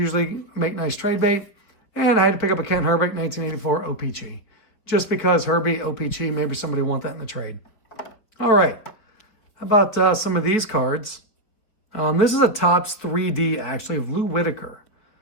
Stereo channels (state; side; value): late; right; 4.9 ms